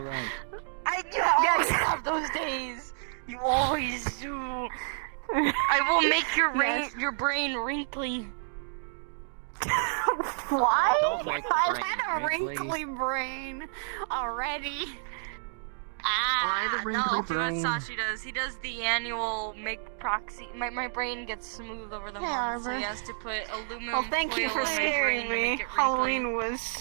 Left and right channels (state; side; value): silent; left; digital silence